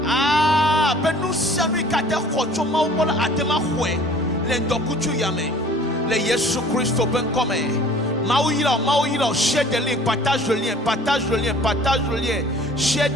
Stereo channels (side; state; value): both; normal; correlation 0.50